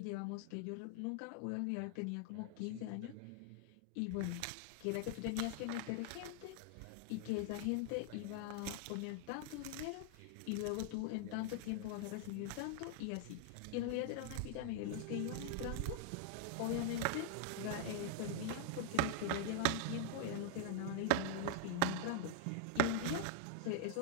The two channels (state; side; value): different; both; correlation 0.00